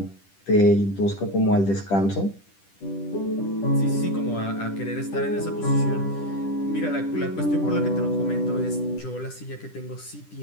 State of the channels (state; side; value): late; right; 10 ms